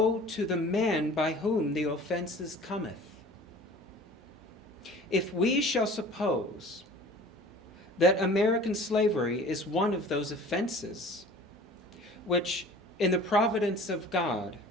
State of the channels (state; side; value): normal; both; correlation 0.45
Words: to the man by whom the offenses cometh. If we shall suppose that American slavery is one of those offenses, which in the providence of God